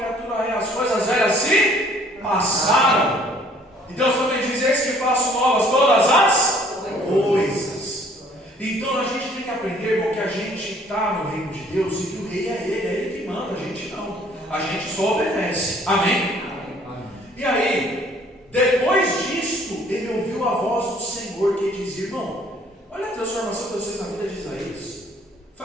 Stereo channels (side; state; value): both; normal; correlation 0.58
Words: é, as coisas velhas se passaram. E Deus também diz: eis que faço novas todas as coisas. Então a gente tem que aprender, irmão, que a gente está no reino de Deus e que o rei é ele que manda, a gente não. A gente só obedece. Amém? E aí, depois disto, ele ouviu a voz do Senhor que dizia: irmão, olha a transformação de vocês na vida de Isaías.